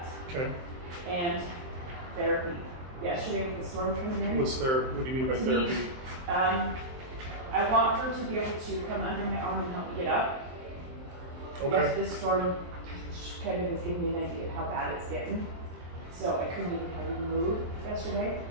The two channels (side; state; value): left; late; 23 ms